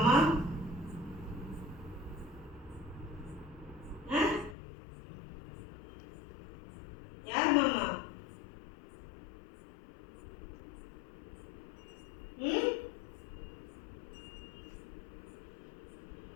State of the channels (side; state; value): right; drops out; at 4.5 s